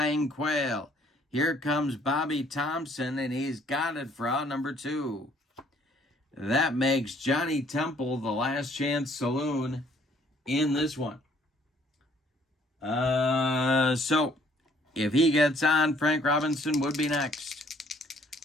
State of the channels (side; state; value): both; normal; correlation 0.62